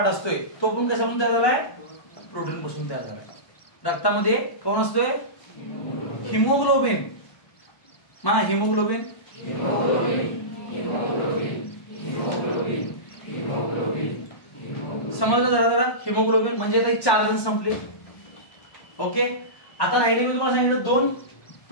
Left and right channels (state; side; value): late; right; 1.1 ms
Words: असतोय. तो पण कशापासून तयार झालाय? प्रोटीन पासून तयार झालाय. रक्तामध्ये कोण असतोय? हिमोग्लोबिन. म्हणा haemoglobin, haemoglobin, haemoglobin, haemoglobin, haemoglobin. समजलं जरा? हिमोग्लोबिन म्हणजे आता 4 जण संपले. ओके. आता राहिले मी तुम्हाला सांगितलं 2